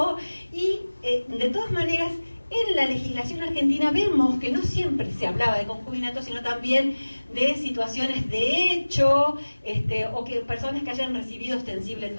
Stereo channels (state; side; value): inverted; both; correlation -1.00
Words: y de todas maneras en la legislación argentina vemos que no siempre se hablaba de concubinato, sino también de situaciones de hecho, o que personas que hayan recibido ostensible